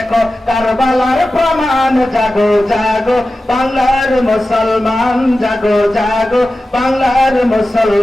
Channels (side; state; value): both; normal; correlation 0.94